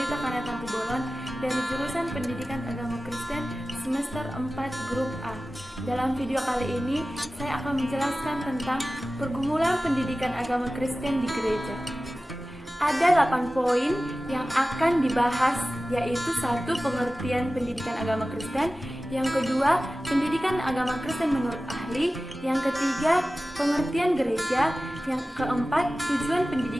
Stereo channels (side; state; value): both; normal; correlation 0.96